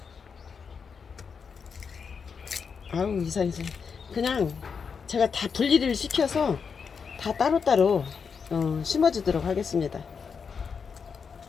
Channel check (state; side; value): quieter; right; 6.0 dB